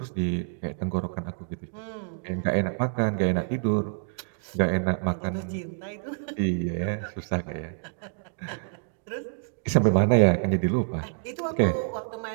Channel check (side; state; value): left; silent; digital silence